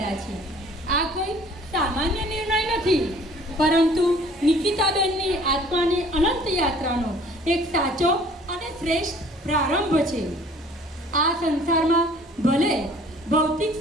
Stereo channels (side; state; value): both; normal; correlation 0.53